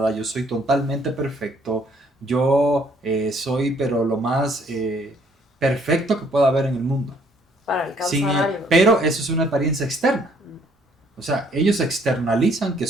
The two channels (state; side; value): normal; both; correlation 0.64